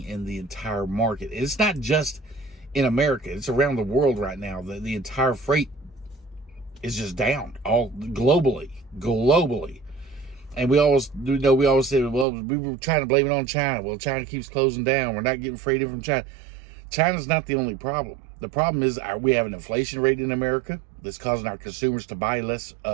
in the entire market. It's not just in America. It's around the world right now. The entire freight is just down, all globally. And we always say, well, we were trying to blame it on China. Well, China keeps closing down. We're not getting freight in from China. China's not the only problem. The problem is we have an inflation rate in America that's causing our consumers to buy less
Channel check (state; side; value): drops out; left; at 12.2 s